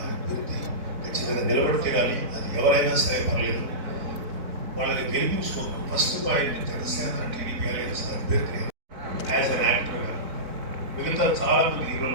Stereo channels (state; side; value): late; left; 4.5 ms